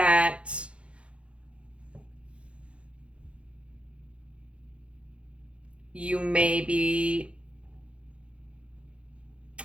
you may be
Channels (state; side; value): late; left; 0.060 ms